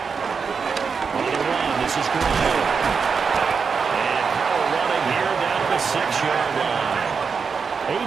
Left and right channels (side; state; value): left; quieter; 5.6 dB